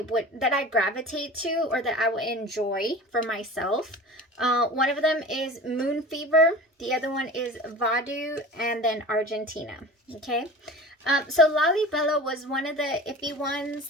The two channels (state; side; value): normal; both; correlation 0.37